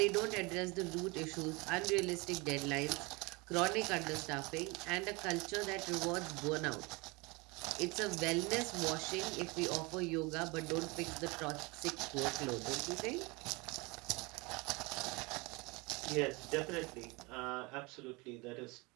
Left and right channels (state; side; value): quieter; left; 26.2 dB